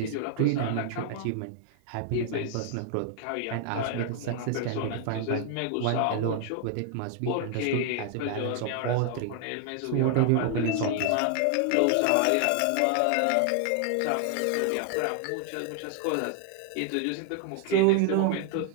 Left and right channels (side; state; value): both; different; correlation 0.00